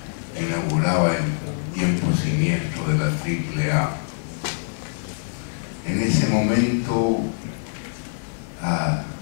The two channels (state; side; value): silent; right; 61 dB below the other